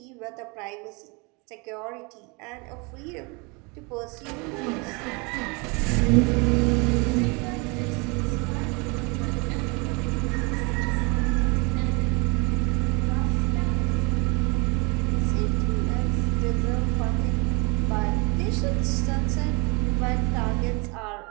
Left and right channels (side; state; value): left; quieter; 29.4 dB